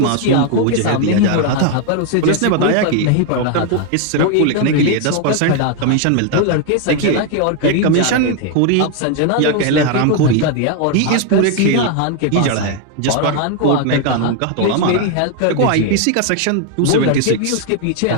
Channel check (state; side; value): different; both; correlation 0.01